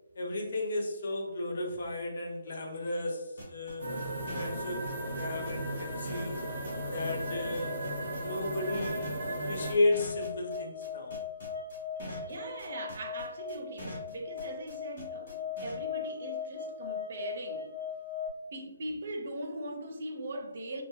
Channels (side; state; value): both; inverted; correlation -0.68